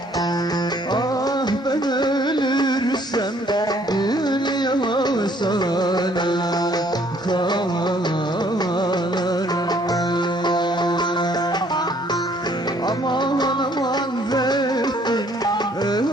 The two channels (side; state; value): both; normal; correlation 0.62